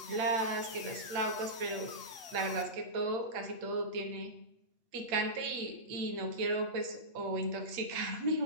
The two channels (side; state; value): left; late; 8.3 ms